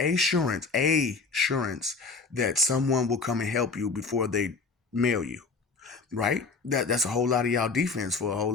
that someone will come and help you before they mail you, right? That's a whole lot of y'all defense for a whole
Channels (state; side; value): quieter; right; 4.4 dB